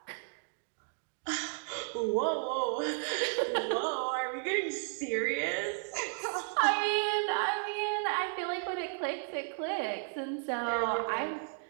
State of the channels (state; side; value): silent; left; 55 dB below the other